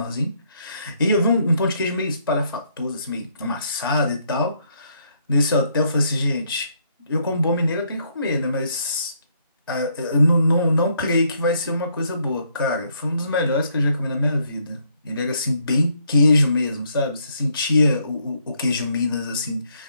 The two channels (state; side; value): inverted; both; correlation -0.71